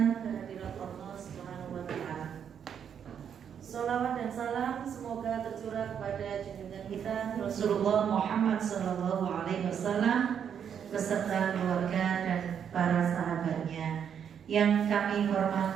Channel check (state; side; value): quieter; left; 8.1 dB